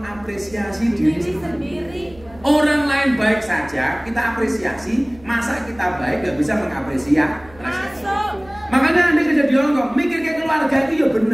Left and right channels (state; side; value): noise; right; hum, 23 dB below the sound